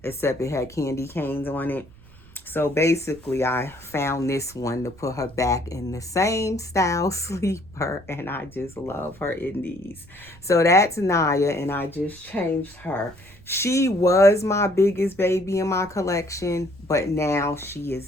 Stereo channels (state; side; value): noise; right; rumble, 23 dB below the sound